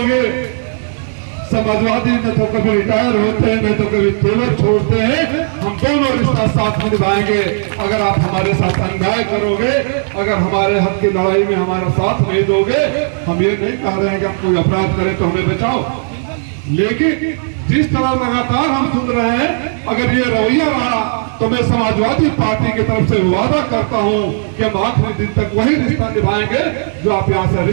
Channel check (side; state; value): left; silent; digital silence